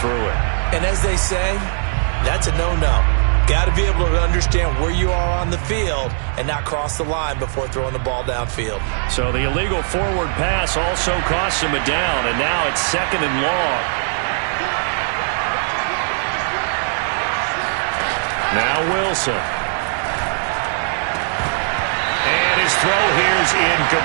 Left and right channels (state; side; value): silent; left; digital silence